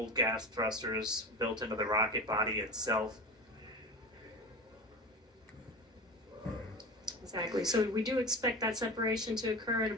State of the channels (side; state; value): both; normal; correlation 0.30